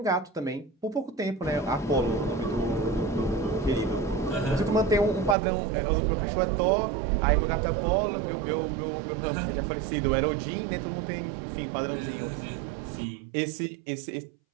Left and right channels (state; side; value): drops out; left; at 5.4 s